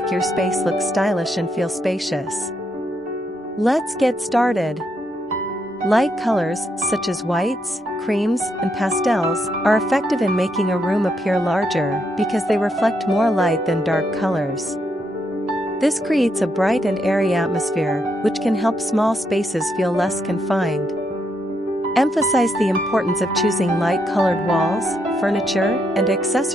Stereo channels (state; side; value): normal; both; correlation 0.78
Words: your space look stylish and feel spacious. Let's get started. Light colors, such as whites, creams, and pastels, are effective in making a room appear larger because they reflect more light than dark colors. This creates a bright and airy atmosphere, which can help small spaces feel less confined. Emphasize the importance of choosing light-colored walls, furniture, and